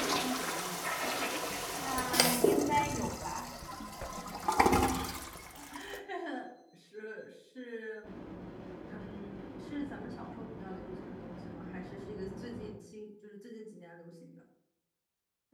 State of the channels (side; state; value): both; identical; correlation 1.00